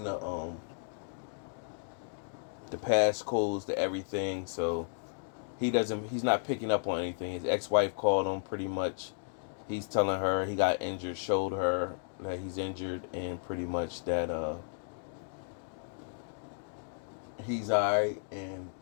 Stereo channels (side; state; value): right; silent; digital silence